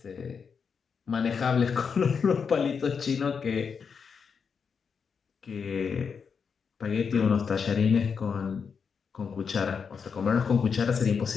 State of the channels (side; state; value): right; quieter; 6.1 dB